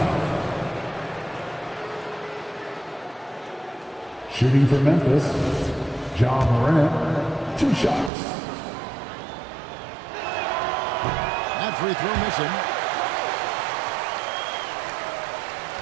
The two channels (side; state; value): left; drops out; at 8.1 s